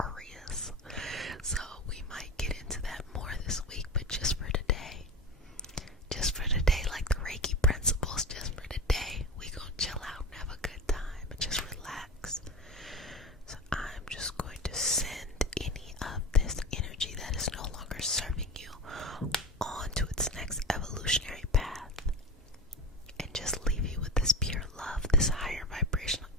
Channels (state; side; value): normal; both; correlation 0.27